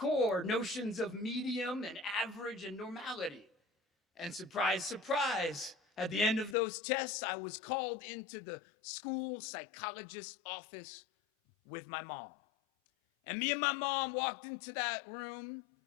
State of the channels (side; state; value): right; drops out; at 6.6 s